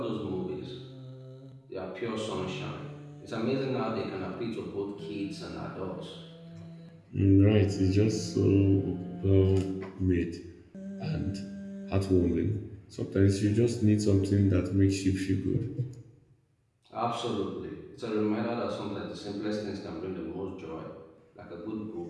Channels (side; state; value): both; identical; correlation 1.00